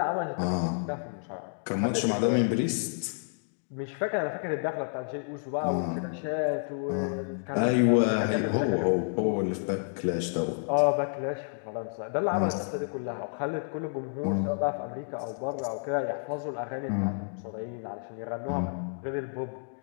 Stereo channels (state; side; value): silent; right; digital silence